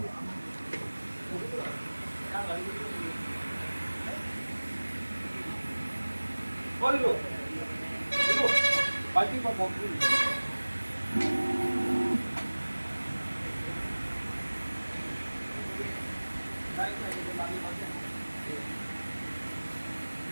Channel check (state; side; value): inverted; both; correlation -1.00